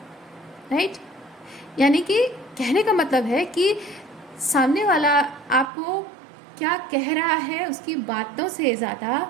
राइट? यानी कि कहने का मतलब है कि सामने वाला आपको क्या कह रहा है उसकी बातों से ज़्यादा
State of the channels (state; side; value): drops out; left; at 5.7 s